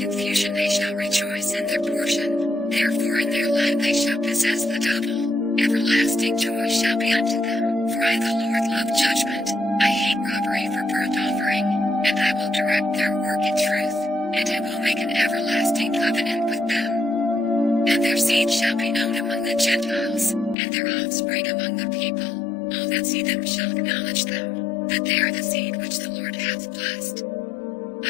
they shall rejoice in their portion. Therefore in their land they shall possess the double. Everlasting joy shall be unto them. For I the Lord love judgment, I hate robbery for burnt offering, and I will direct their work in truth, and I will make an everlasting covenant with them. And their seed shall be known among the Gentiles, and their offspring among the people. All that see them shall acknowledge them, that they are the seed which the Lord hath blessed.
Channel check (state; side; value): drops out; right; at 20.6 s